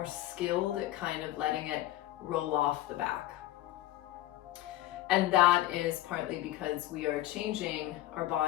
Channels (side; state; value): right; quieter; 15.2 dB